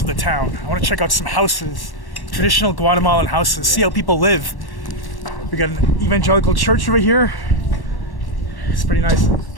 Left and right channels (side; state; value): right; late; 1.1 ms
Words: of the town. I want to check out some houses, traditional Guatemalan houses, see how people live. We got an evangelical church over here. It's pretty nice.